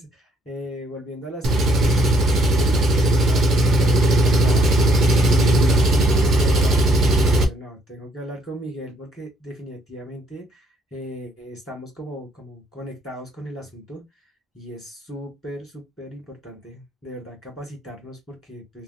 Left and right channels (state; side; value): normal; both; correlation 0.66